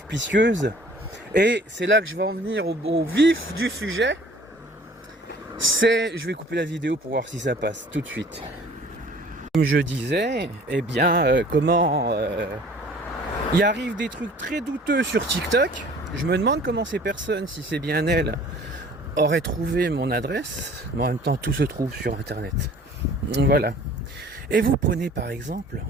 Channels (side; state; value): both; normal; correlation 0.50